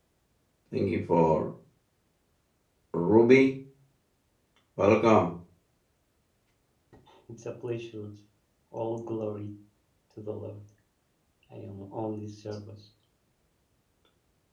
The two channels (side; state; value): both; identical; correlation 1.00